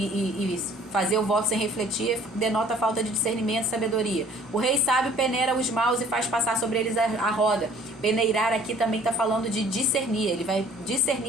fazer o voto sem refletir denota falta de discernimento e sabedoria. O rei sábio peneira os maus e faz passar sobre eles a roda. Peneirar aqui também está falando de discernir. Ele vai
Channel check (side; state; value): both; normal; correlation 0.54